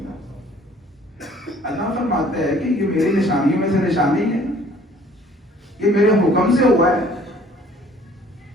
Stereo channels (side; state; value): both; normal; correlation 0.55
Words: اللہ فرماتا ہے کہ یہ میری نشانیوں میں سے نشانی ہے، یہ میرے حکم سے ہوا ہے.